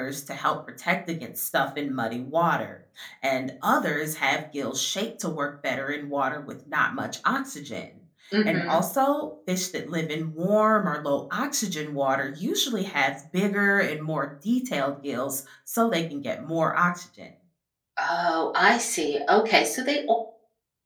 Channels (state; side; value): identical; both; correlation 1.00